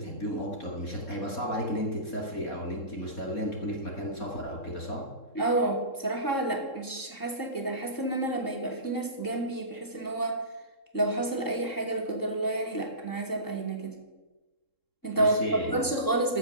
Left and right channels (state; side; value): late; right; 3.7 ms